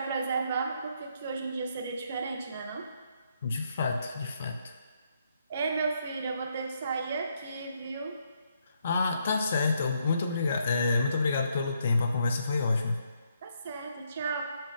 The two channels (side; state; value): both; inverted; correlation -0.75